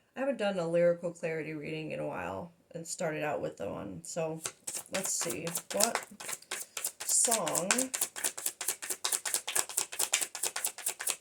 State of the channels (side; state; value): both; identical; correlation 1.00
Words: I haven't done a lyrical clarity reading in a while and started out with the one. So let's see. What song